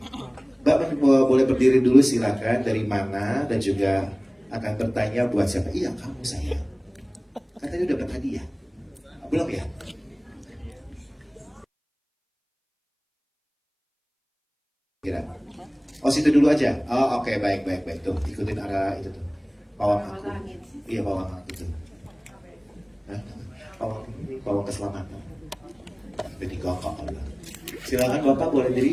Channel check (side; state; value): both; identical; correlation 1.00